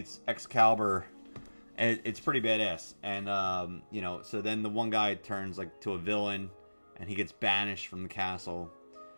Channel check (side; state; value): both; inverted; correlation -1.00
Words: Excalibur, and it's pretty badass. And you know, so then the one guy turns like to a villain, and he gets banished from the castle.